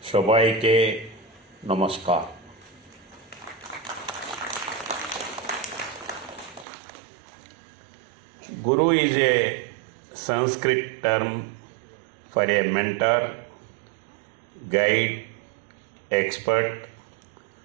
সবাইকে নমস্কার। Guru is a Sanskrit term for a mentor, guide, expert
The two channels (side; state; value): left; drops out; at 6.7 s